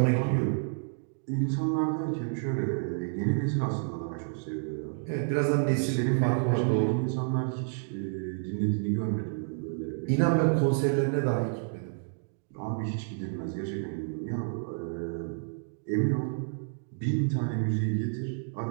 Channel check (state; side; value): silent; left; digital silence